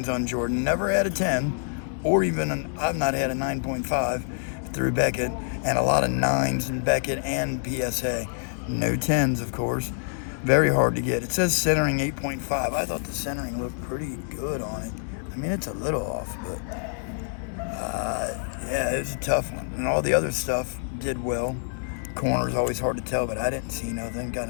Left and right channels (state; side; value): silent; right; digital silence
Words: on Jordan. Never had a 10, or even I've not had a 9.5 through Beckett, and a lot of 9s in Beckett and PSA. No 10s, of course. Very hard to get. It says centering 8.5. I thought the centering looked pretty good on it. I mean, it's a little off, but yeah, it's a tough one. And all the other stuff did well. Corners always hard to tell, but I didn't see nothing. Got